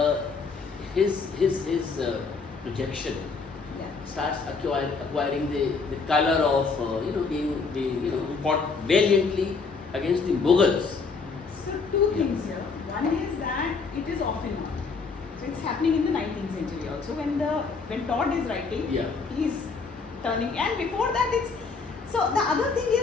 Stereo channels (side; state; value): right; quieter; 4.7 dB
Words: his projection starts acquiring the color of being fought valiantly against the Mughals? So two things here. One is that it is often not. So it's happening in the 19th century also. When Todd is writing, he's turning, and before that it's. So the other thing